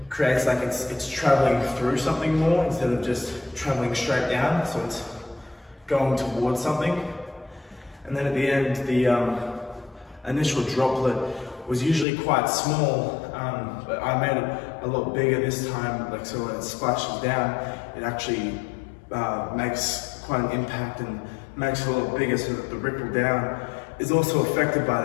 creates like it's traveling through something more instead of just traveling straight down, so it's going towards something. And then at the end, the initial droplet was usually quite small, but I made it a lot bigger this time, like so when it splashes down, it actually makes quite an impact and makes it a lot bigger, so that the ripple down is also affected by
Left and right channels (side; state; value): right; drops out; at 12.1 s